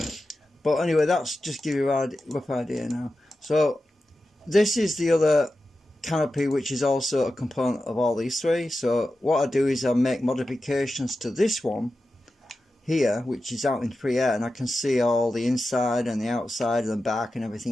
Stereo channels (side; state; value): both; normal; correlation 0.92